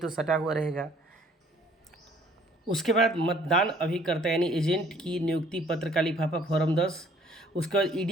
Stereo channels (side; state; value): both; normal; correlation 0.58